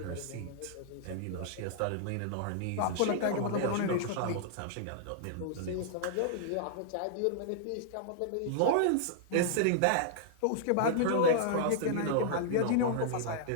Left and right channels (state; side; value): different; both; correlation -0.01